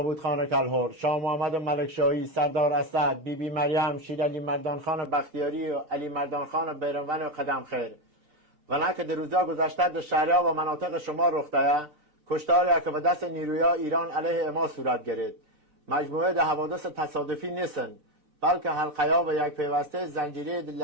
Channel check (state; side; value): late; left; 6.7 ms